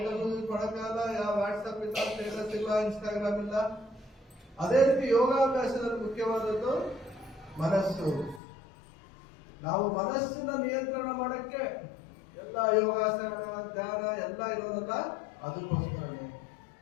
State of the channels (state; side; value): drops out; right; at 8.4 s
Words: ಯೂಸ್ ಮಾಡೋಕ್ಕಾಗಲ್ಲ, ಯಾವ ವಾಟ್ಸಪ್ ಇಲ್ಲ, ಸ್ಟೇಟಸ್ ಇಲ್ಲ, ಇನ್ಸ್ಟಾಗ್ರಾಮ್ ಇಲ್ಲ. ಅದೇ ರೀತಿ ಯೋಗಾಭ್ಯಾಸದಲ್ಲಿ ಮುಖ್ಯವಾದದ್ದು ಮನಸ್ಸು. ನಾವು ಮನಸ್ಸನ್ನ ನಿಯಂತ್ರಣ ಮಾಡಕ್ಕೆ ಎಲ್ಲ ಯೋಗಾಸನ, ಧ್ಯಾನ ಎಲ್ಲ ಇರೋದಲ್ಲ, ಅದಕ್ಕೋಸ್ಕರನೇ.